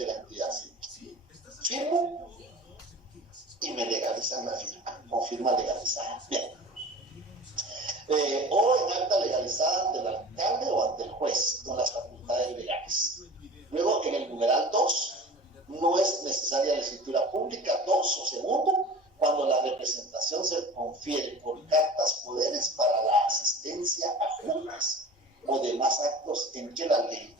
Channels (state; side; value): normal; both; correlation 0.38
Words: la entidad civil. Firmo y me legalizan la firma, con firma legalizada. Bien. O en acta legalizada ante el alcalde o ante el juez, con las facultades legales. Luego, en el numeral 2, no es necesaria la escritura pública. 2 o segundo, cuando la representación se confiere por cartas poderes para la asistencia a juntas o demás actos en que la ley